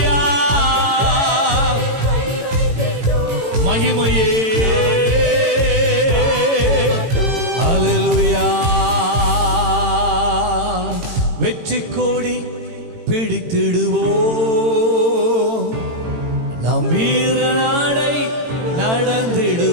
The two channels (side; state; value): left; late; 18 ms